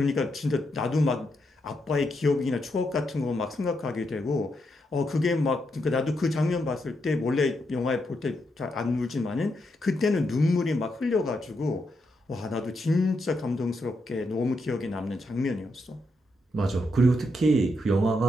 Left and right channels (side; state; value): both; normal; correlation 0.82